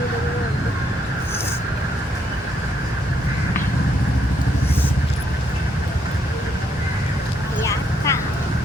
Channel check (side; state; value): both; normal; correlation 0.74